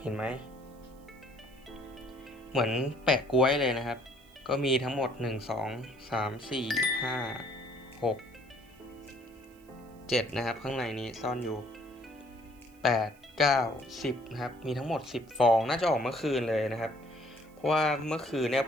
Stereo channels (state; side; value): noise; right; hiss, 30 dB below the sound